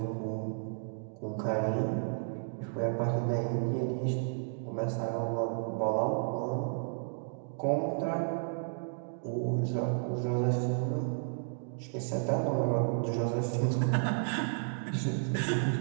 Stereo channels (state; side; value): silent; left; digital silence